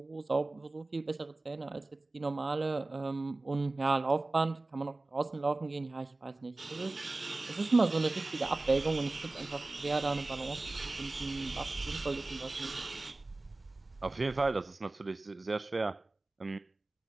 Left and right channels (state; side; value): quieter; left; 3.1 dB